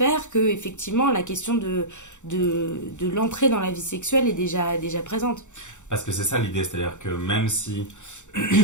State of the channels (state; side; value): late; right; 0.85 ms